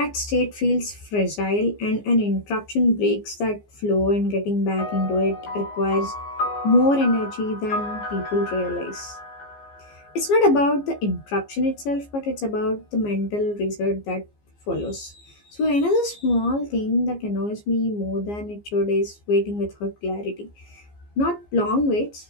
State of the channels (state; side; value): late; right; 15 ms